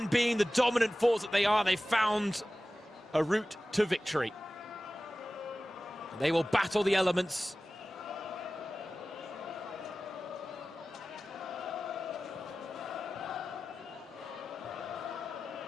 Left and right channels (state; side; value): normal; both; correlation 0.96